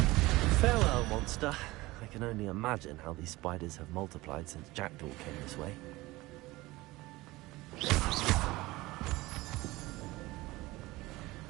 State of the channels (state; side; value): quieter; left; 19.9 dB